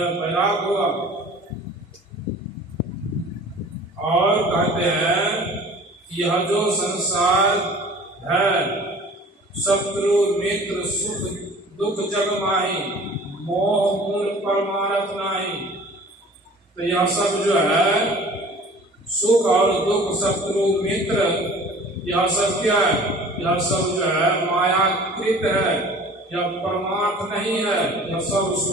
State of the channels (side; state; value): both; normal; correlation 0.46